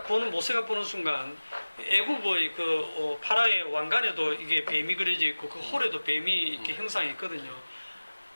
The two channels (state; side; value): inverted; both; correlation -1.00